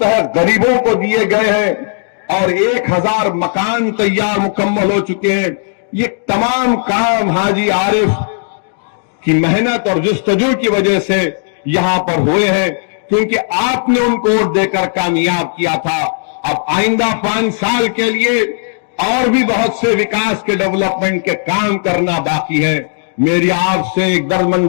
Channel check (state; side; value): silent; right; digital silence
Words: गरीबों को दिए गए हैं और 1000 मकान तैयार मुकम्मल हो चुके हैं। ये तमाम काम हाजी आरिफ की मेहनत और जुस्तजू की वजह से यहां पर हुए हैं, क्योंकि आपने उनको वोट देकर कामयाब किया था। अब आइंदा 5 साल के लिए और भी बहुत से विकास के, डेवलपमेंट के काम करना बाकी है। मेरी आपसे एक